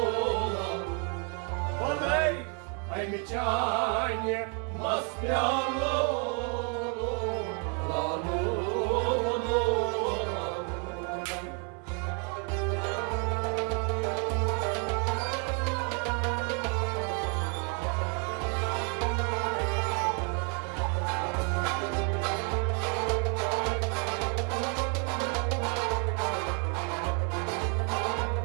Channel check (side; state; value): left; quieter; 38.0 dB